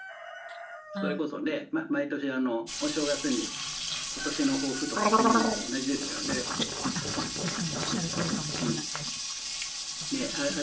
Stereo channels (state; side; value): identical; both; correlation 1.00